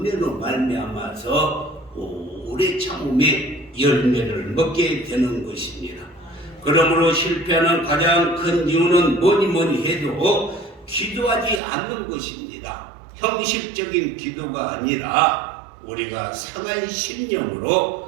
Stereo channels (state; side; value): drops out; left; at 11.6 s